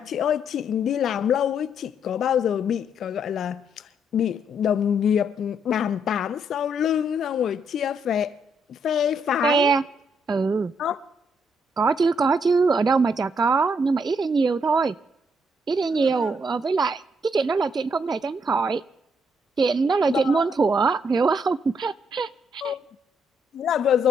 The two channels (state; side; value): normal; both; correlation 0.73